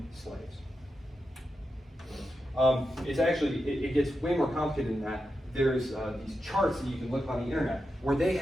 slaves. It's actually, it gets way more complicated than that. There's these charts that you can look on the internet where they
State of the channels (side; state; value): both; normal; correlation 0.88